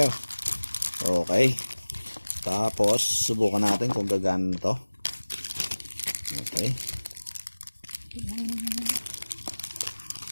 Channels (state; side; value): inverted; both; correlation -1.00